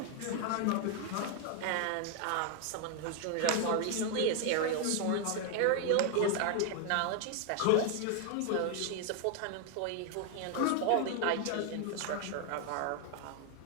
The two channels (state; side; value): different; both; correlation 0.01